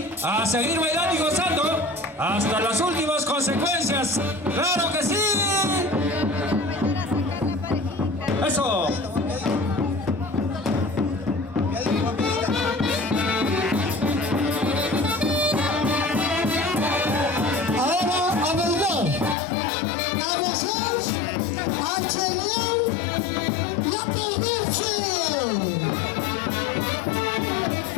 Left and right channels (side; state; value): right; drops out; at 19.4 s